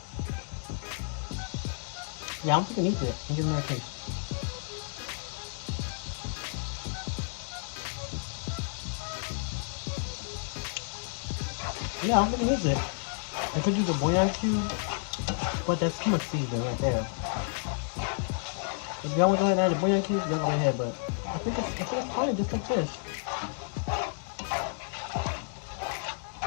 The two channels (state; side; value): silent; right; digital silence